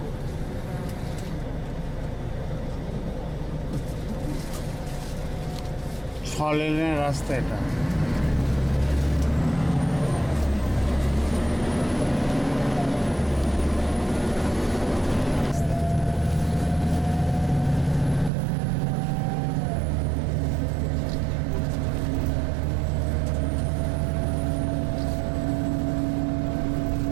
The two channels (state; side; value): drops out; left; at 18.3 s